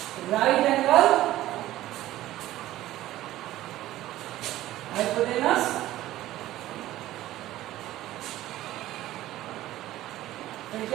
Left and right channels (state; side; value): quieter; left; 15.0 dB